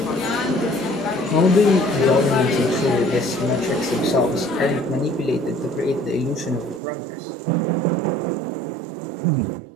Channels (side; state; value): left; drops out; at 6.8 s